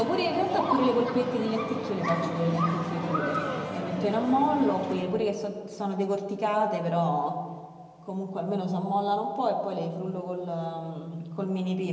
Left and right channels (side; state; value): both; identical; correlation 1.00